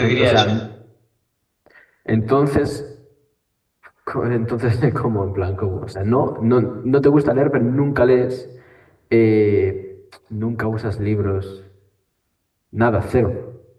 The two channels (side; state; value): both; identical; correlation 1.00